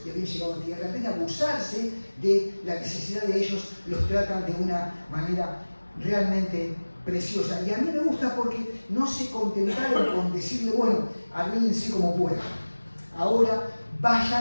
y habían llegado a tierra, en vez de abusarse de la necesidad de ellos, los tratan de una manera realmente preciosa. Y a mí me gusta porque no se contentaron con decirle, bueno, arréglense como puedan. Ahora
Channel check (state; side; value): inverted; both; correlation -1.00